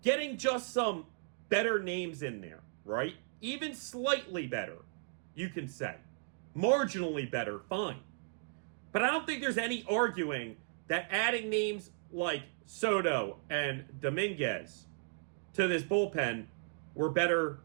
Getting just some better names in there, right? Even slightly better, you can say. Marginally better, fine. But I don't think there's any arguing that adding names like Soto and Dominguez to this bullpen were better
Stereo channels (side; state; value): left; silent; digital silence